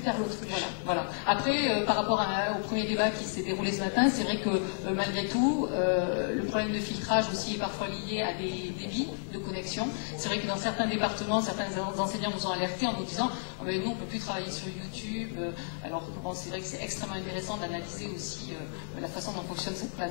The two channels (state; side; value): silent; right; digital silence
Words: l'autruche. Voilà. Après, par rapport au premier débat qui s'est déroulé ce matin, c'est vrai que malgré tout, le problème de filtrage aussi est parfois lié à des débits de connexion. C'est vrai que dans certains départements, certains enseignants nous ont alertés en nous disant oh, mais nous, on ne peut plus travailler sur YouTube. Alors bon, c'est vrai que c'est extrêmement intéressant d'analyser aussi la façon dont fonctionne cette